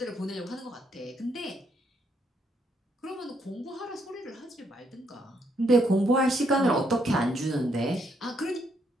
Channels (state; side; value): normal; both; correlation 0.74